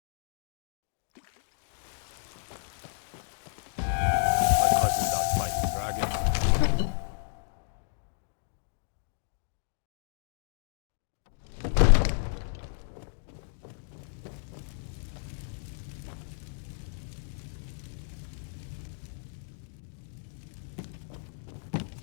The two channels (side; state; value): right; silent; digital silence